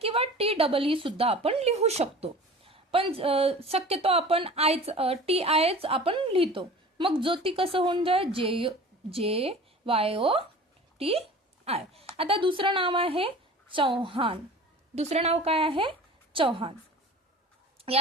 किंवा टी डबल ई सुद्धा आपण लिहू शकतो, पण शक्यतो आपण टी आयच आपण लिहितो. मग ज्योती कसं होऊन जाय? जे वायो टी आय. आता दुसरं नाव आहे चव्हाण. दुसरं नाव काय आहे? चव्हाण.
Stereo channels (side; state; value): both; normal; correlation 0.40